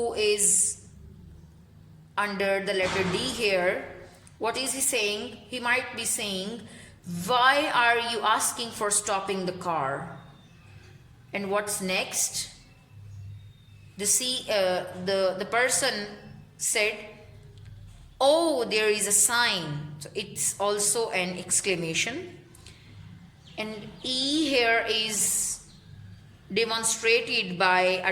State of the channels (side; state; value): both; identical; correlation 1.00